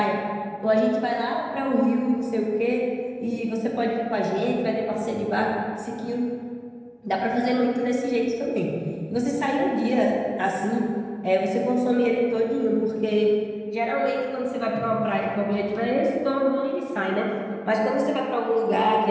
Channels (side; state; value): both; identical; correlation 1.00